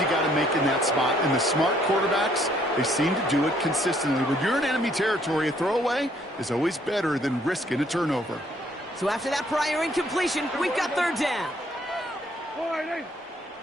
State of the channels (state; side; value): normal; both; correlation 0.65